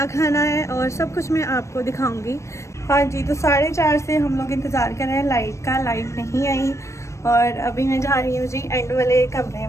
खाना है और सब कुछ मैं आपको दिखाऊंगी। हाँ जी, तो 4:30 से हम लोग इंतज़ार कर रहे हैं लाइट का। लाइट नहीं आई और अभी मैं जा रही हूँ जी एंड वाले कमरे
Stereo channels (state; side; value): late; right; 0.14 ms